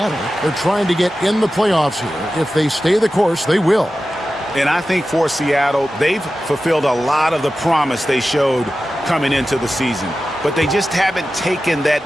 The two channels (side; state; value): both; normal; correlation 0.94